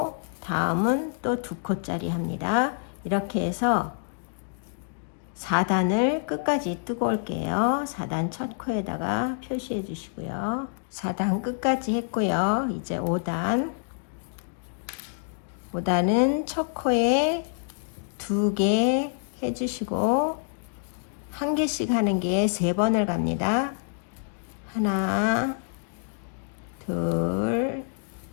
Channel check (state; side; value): silent; right; digital silence